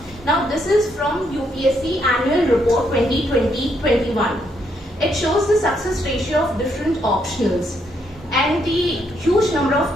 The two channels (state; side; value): normal; both; correlation 0.75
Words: Now, this is from UPSC Annual Report 2020-21. It shows the success ratio of different optionals. And the huge number of